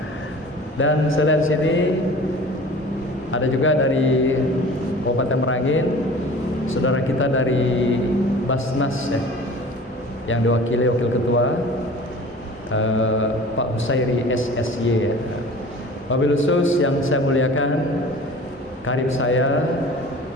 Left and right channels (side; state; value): both; normal; correlation 0.42